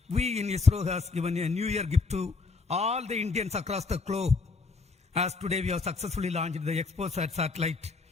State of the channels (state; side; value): quieter; right; 4.2 dB